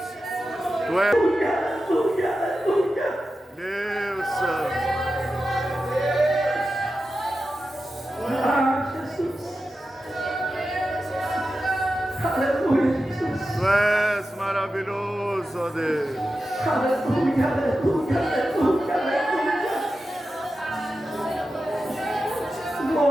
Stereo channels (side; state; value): both; normal; correlation 0.92